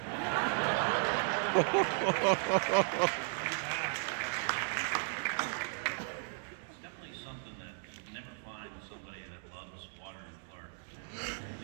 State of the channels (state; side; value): silent; left; 54 dB below the other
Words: It's definitely something that you never find with somebody that loves water in Florida.